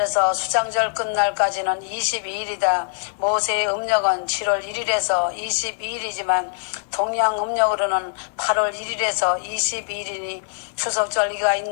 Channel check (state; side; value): silent; right; 57 dB below the other